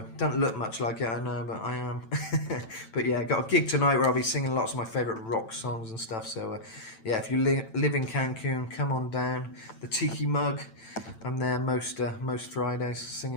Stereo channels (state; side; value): late; right; 9.0 ms